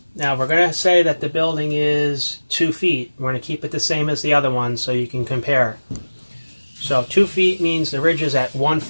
Now we're going to say that the building is 2 feet. We're going to keep it the same as the other one so you can compare. So 2 feet means the ridge is at 1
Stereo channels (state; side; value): inverted; both; correlation -1.00